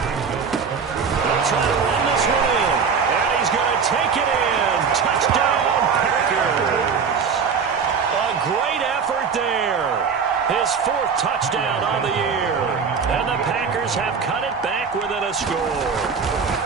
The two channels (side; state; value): left; quieter; 5.9 dB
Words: They'll try to run this one in. And he's going to take it in. Touchdown, Packers. A great effort there. His 4th touchdown on the year. And the Packers have cut it back within a score.